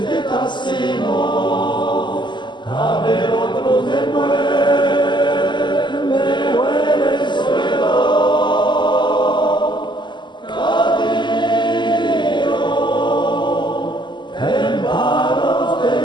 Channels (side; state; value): right; late; 0.22 ms